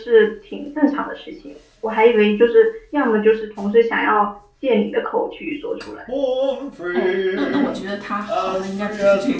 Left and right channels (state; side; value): identical; both; correlation 1.00